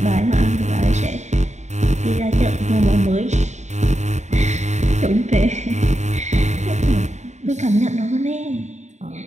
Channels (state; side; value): late; left; 0.34 ms